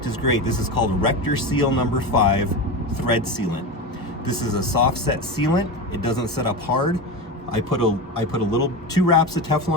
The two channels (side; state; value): both; normal; correlation 0.21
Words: is great. This is called Rector Seal number 5 thread sealant. This is a soft set sealant. It doesn't set up hard. I put a little 2 wraps of